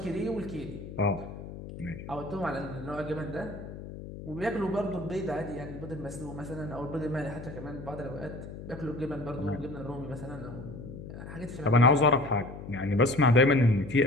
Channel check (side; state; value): left; noise; hum, 11 dB below the sound